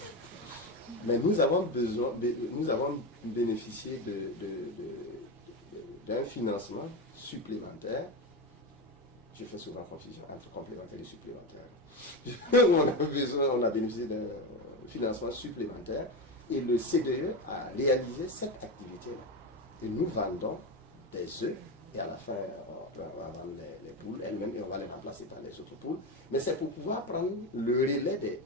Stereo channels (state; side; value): normal; both; correlation 0.17